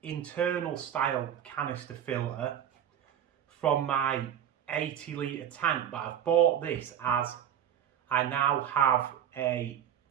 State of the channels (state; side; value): quieter; left; 9.7 dB